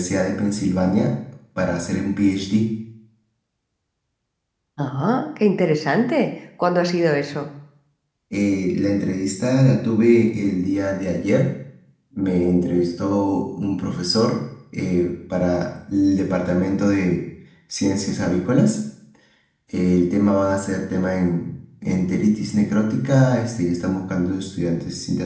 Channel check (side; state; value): both; identical; correlation 1.00